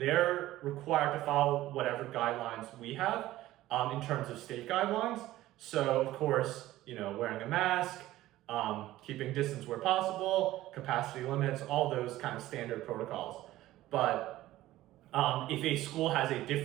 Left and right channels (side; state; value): left; quieter; 15.6 dB